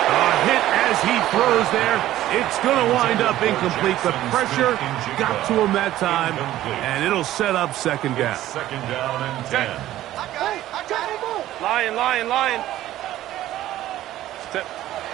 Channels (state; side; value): quieter; left; 14.1 dB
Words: A hit as he throws there. It's going to wind up incomplete. The pressure got to him that time, and it'll set up second down. Second down and 10. Lion.